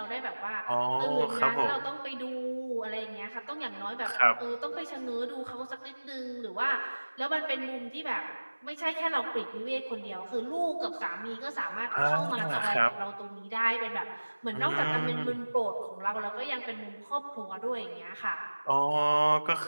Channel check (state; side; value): inverted; both; correlation -1.00